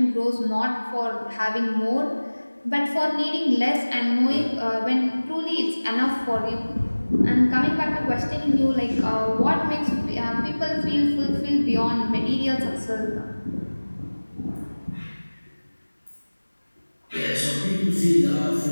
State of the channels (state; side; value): inverted; both; correlation -1.00